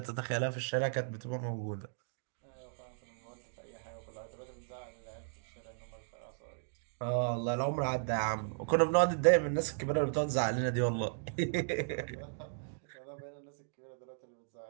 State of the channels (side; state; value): left; silent; digital silence